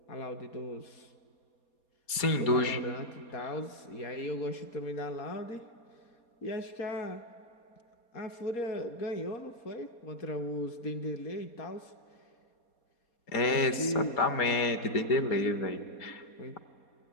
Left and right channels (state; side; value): late; right; 4.2 ms